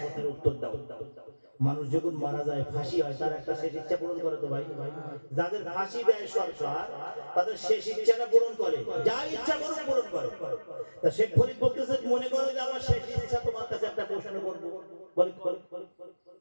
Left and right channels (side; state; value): both; inverted; correlation -1.00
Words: কথার উত্তর দাও। মানুষ যখন মারা যায়, ফাঁসি হয়, তার একটা শেষ ইচ্ছা পূরণ করে তো ভাই? যাদের ফাঁসি দেয় সরকার, তাদের শেষ ইচ্ছাটা পূরণ করে, যা ইচ্ছা করুক পূরণ করে। তা শেখ ফরিদ বলতেছে, মনে করো যে আমার শেষ ইচ্ছা তোমার কাছে একটা প্রশ্ন করবো। বলে,